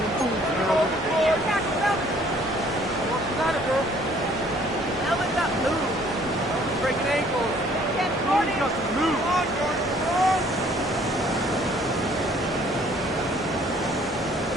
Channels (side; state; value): both; normal; correlation 0.59